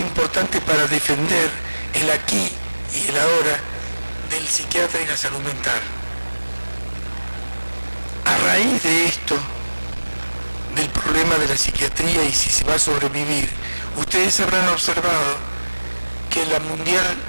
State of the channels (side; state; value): both; inverted; correlation -1.00